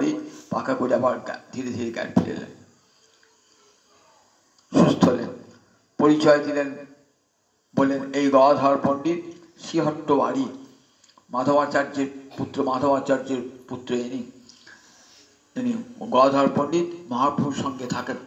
পাকা করে আবার ধীরে ধীরে জ্ঞান ফিরে এলেন, সুস্থ হলেন। পরিচয় দিলেন, বললেন এই গদাধর পণ্ডিত শ্রীহট্ট বাড়ি, মাধবাচার্যের পুত্র ইনি গদাধর পণ্ডিত মহাপ্রভুর সঙ্গে থাকেন।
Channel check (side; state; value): both; identical; correlation 1.00